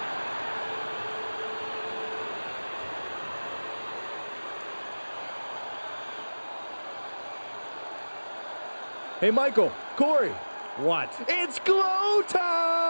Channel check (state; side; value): inverted; both; correlation -1.00